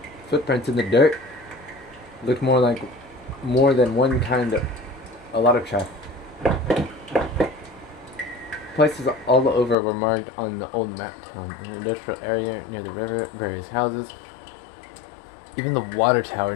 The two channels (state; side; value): drops out; right; at 9.8 s